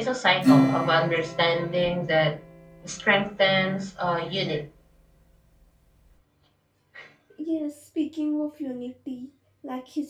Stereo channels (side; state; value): both; identical; correlation 1.00